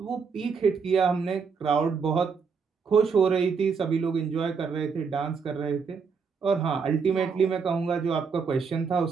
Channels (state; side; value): quieter; left; 5.6 dB